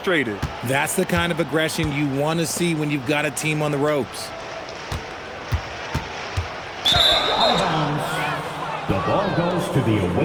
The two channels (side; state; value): both; identical; correlation 1.00